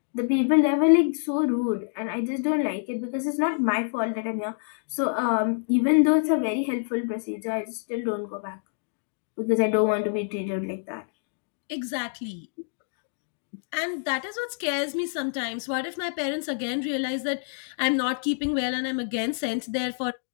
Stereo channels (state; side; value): silent; right; digital silence